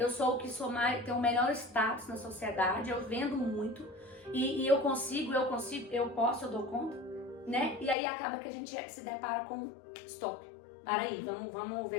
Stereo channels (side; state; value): right; drops out; at 8.0 s